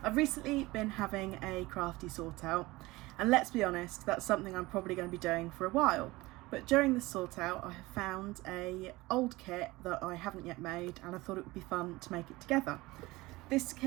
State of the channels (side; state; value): left; quieter; 20.5 dB